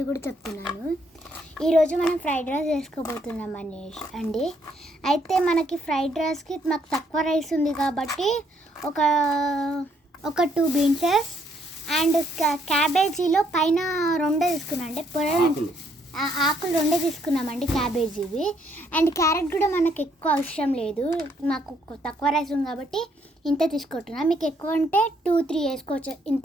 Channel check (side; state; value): both; normal; correlation 0.70